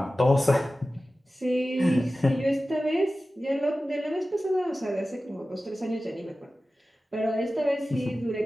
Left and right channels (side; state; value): both; normal; correlation 0.95